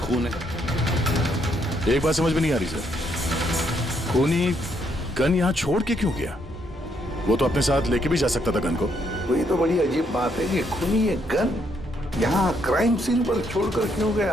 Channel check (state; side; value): normal; both; correlation 0.73